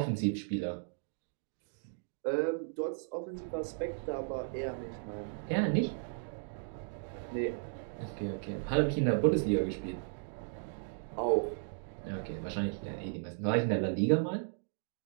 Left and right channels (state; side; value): silent; left; digital silence